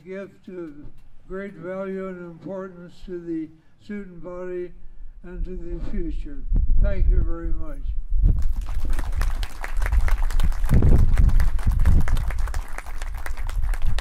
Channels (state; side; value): identical; both; correlation 1.00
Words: of great value and importance to the student body and to the future. Thank you very much. I